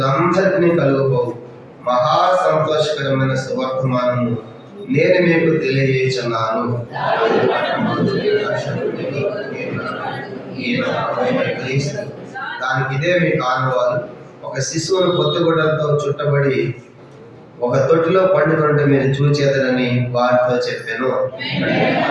కలుగుపోవు మహా సంతోషకరమైన సువర్తమానము నేను మీకు తెలియజేస్తున్నాను. దానికి ఇదే మీకు ఆనవాలు. ఒక శిశువును కొత్తగుడ్డలతో చుట్టబడి ఒక తొట్టిలో పండుకుంటే మీరు చూచేదనని వారితో చెప్పాను.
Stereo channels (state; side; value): identical; both; correlation 1.00